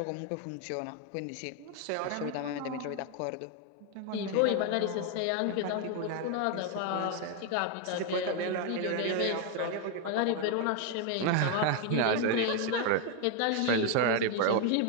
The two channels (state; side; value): different; both; correlation 0.01